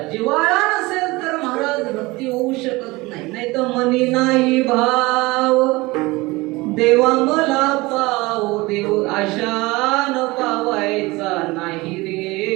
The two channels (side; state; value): left; quieter; 22.1 dB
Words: जिव्हाळा नसेल तर महाराज भक्ती होऊ शकत नाही. नाही तर मनी नाही भाव देवा मला पाव देव आशान पावायचा नाही